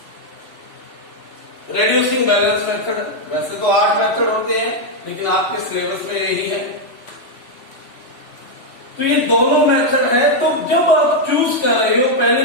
रेड्यूसिंग बैलेंस मेथड। वैसे तो 8 मेथड होते हैं, लेकिन आपके सिलेबस में यही है। तो ये दोनों मेथड है। तो जब आप चूज कर रहे हो,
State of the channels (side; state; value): right; late; 3.1 ms